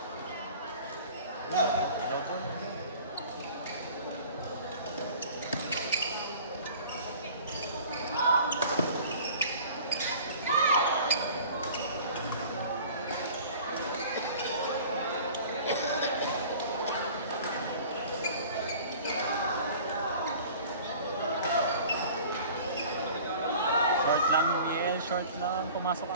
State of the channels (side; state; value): both; inverted; correlation -0.45